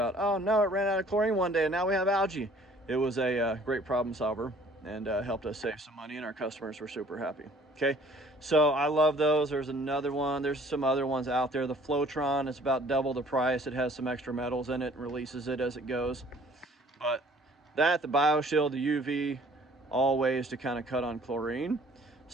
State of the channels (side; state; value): both; normal; correlation 0.55